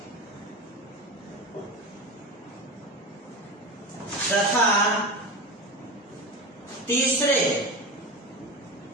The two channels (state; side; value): normal; both; correlation 0.26